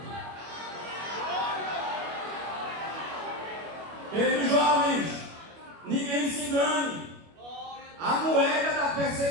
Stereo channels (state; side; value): late; left; 25 ms